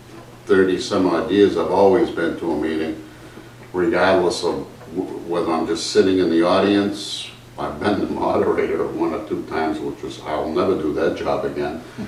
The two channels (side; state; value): both; identical; correlation 1.00